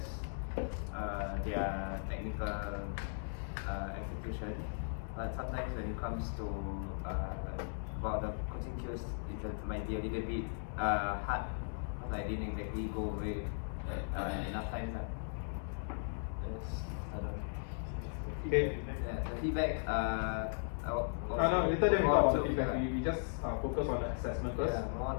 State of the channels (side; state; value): right; silent; digital silence